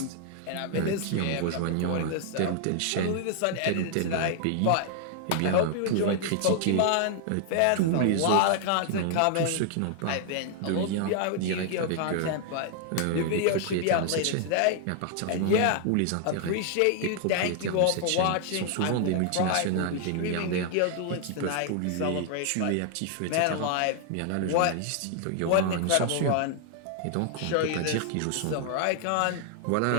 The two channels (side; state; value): both; different; correlation 0.00